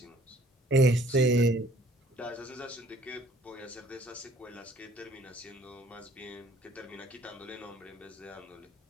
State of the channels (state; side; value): normal; both; correlation 0.58